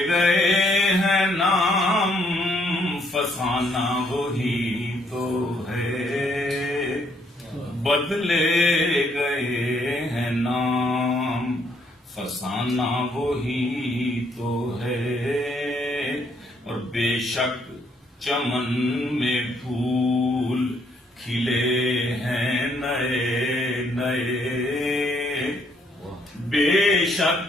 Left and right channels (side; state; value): both; normal; correlation 0.70